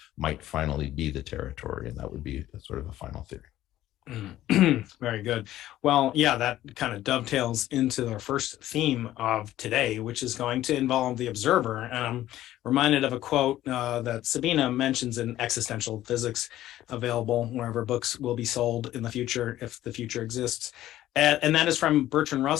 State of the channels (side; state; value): right; quieter; 13.9 dB